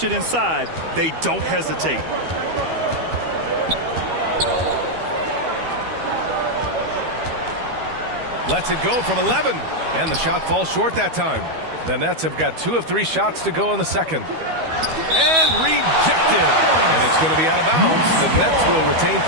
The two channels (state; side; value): late; left; 12 ms